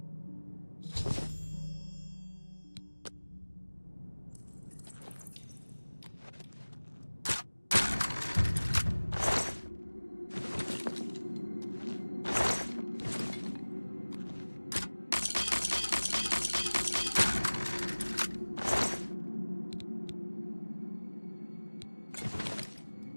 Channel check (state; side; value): inverted; both; correlation -1.00